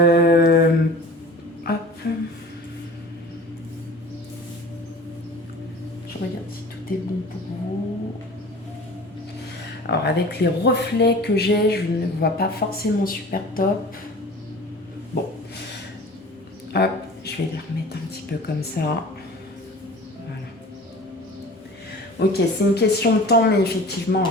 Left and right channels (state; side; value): normal; both; correlation 0.41